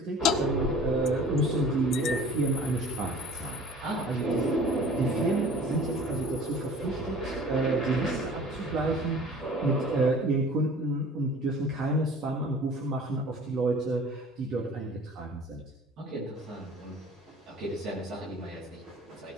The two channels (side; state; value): both; normal; correlation 0.46